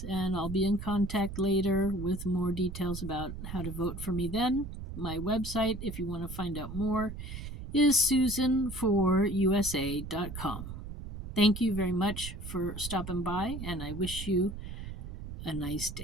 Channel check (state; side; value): noise; right; rumble, 9 dB below the sound